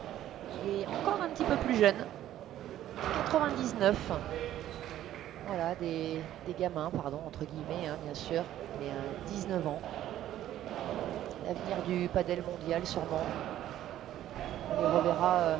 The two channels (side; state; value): left; quieter; 12.5 dB